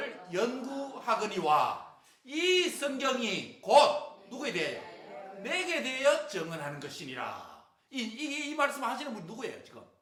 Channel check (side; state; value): both; identical; correlation 1.00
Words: 연구하거니와 이 성경이 곧 누구에 대하여? 내게 대하여 증언하는 것이니라. 이 말씀 하시는 분이 누구예요 지금?